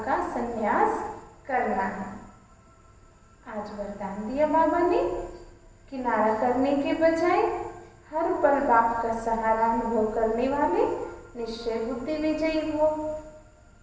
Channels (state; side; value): identical; both; correlation 1.00